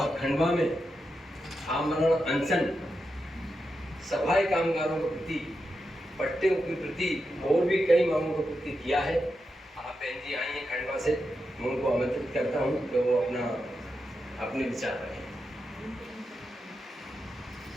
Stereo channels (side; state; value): both; normal; correlation 0.87